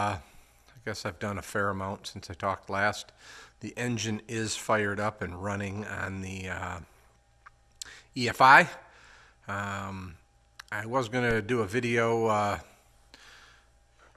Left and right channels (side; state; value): both; identical; correlation 1.00